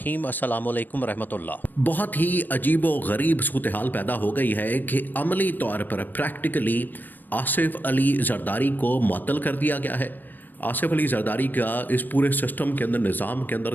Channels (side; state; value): right; late; 0.090 ms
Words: अस्सलामुअलैकुम रहमतुल्लाह। बहुत ही अजीब व गरीब सूरत हाल पैदा हो गई है कि अमली तौर पर प्रैक्टिकली आसिफ अली जरदारी को मुअत्तल कर दिया गया है। आसिफ अली जरदारी का इस पूरे सिस्टम के अंदर, निज़ाम के अंदर